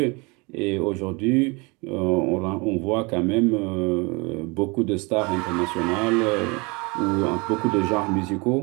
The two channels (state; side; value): quieter; left; 27.9 dB